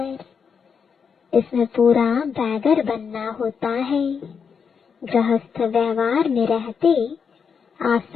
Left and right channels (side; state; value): right; quieter; 6.3 dB